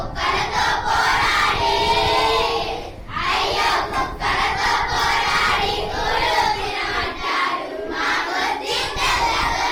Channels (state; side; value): identical; both; correlation 1.00